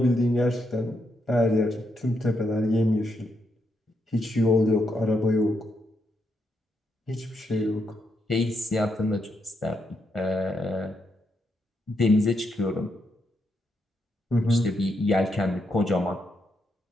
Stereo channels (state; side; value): normal; both; correlation 0.80